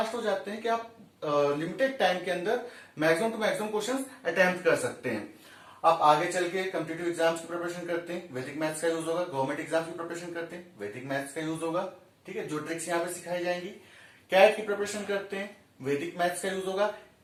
हो जाते हैं कि आप लिमिटेड टाइम के अंदर maximum to maximum questions attempt कर सकते हैं। आप आगे चल के कॉम्पिटिटिव एग्जाम्स की प्रिपरेशन करते हैं, वैदिक मैथ्स का यूज होगा। गवर्नमेंट एग्जाम्स की प्रिपरेशन करते हैं, वैदिक मैथ्स का यूज होगा। ठीक है, जो ट्रिक्स यहाँ पे सिखाई जाएंगी। कैट की प्रिपरेशन करते हैं, वैदिक मैथ्स का यूज होगा।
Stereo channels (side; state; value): both; identical; correlation 1.00